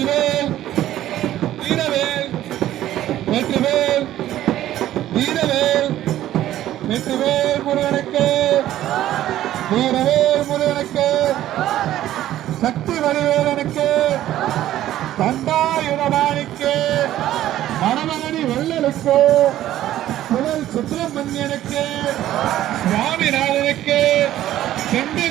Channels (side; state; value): left; quieter; 13.2 dB